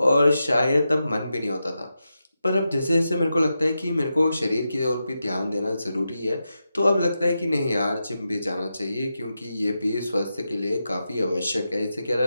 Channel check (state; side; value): inverted; both; correlation -0.88